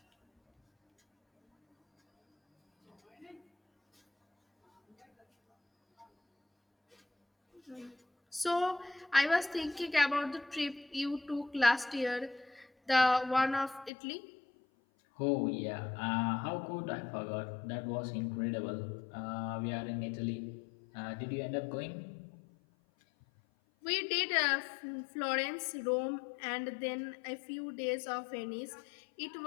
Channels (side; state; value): right; drops out; at 13.9 s